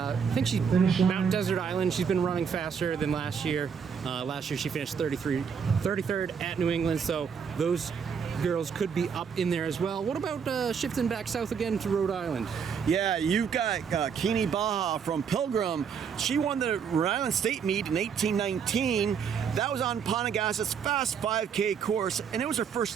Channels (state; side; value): quieter; left; 6.8 dB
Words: think she's Mount Desert Island. She's been running faster than last year. Last year she finished 33rd at New England, so those girls could be up in there as well. What about shifting back south again to Rhode Island? Yeah, you've got Keene Baha from Pilgrim. She won the Rhode Island State Meet in 1819. That was on Ponegass's Fast 5K course, and it was her first